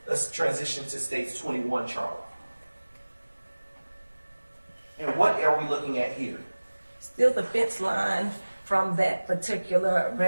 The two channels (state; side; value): inverted; both; correlation -1.00